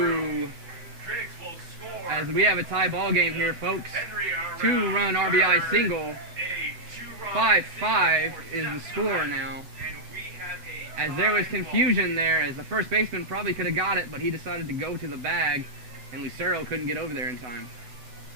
As we have a tie ball game here, folks. 2-run RBI single. 5-5 is the score now. As there was confusion there, as the first baseman probably could have got it, but he decided to go to the bag, and Lucero couldn't get over there in time.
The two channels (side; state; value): left; late; 8.0 ms